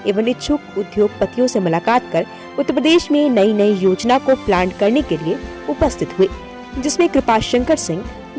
एवं इच्छुक उद्योगपतियों से मुलाकात कर उत्तर प्रदेश में नई योजना को प्लान करने के लिए उपस्थित हुए, जिसमें कृपाशंकर सिंह,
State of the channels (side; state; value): both; identical; correlation 1.00